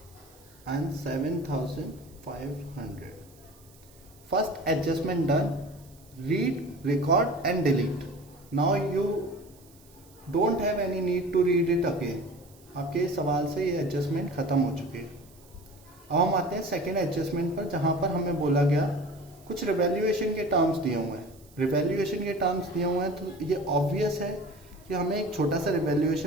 and 7,500। First adjustment done, read, record and delete. Now you don't have any need to read it again. आपके सवाल से ये एडजस्टमेंट खत्म हो चुकी है। अब हम आते हैं सेकेंड एडजस्टमेंट पर, जहां पर हमें बोला गया कुछ रिवैल्यूएशन के टर्म्स दिए हुए हैं। रिवैल्यूएशन के टर्म्स दिए हुए हैं तो ये ऑब्वियस है कि हमें एक छोटा सा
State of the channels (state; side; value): noise; right; hiss, 27 dB below the sound